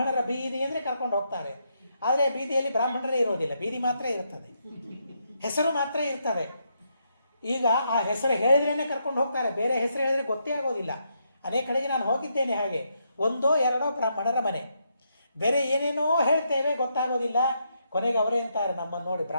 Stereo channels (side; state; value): both; inverted; correlation -0.79